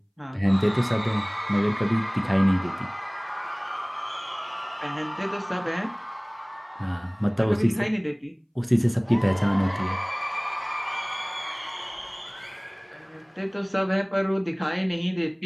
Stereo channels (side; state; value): both; identical; correlation 1.00